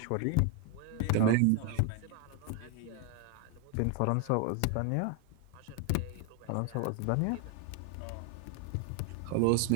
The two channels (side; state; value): both; different; correlation 0.01